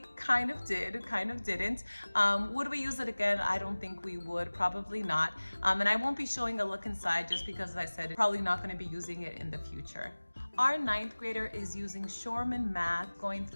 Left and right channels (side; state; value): both; inverted; correlation -1.00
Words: kind of did, kind of didn't. Would we use it again? I don't think we would, probably not. And I won't be showing a look inside just because, as I said, probably not going to be using it in the future. Our 9th grader is using Shorman Math, going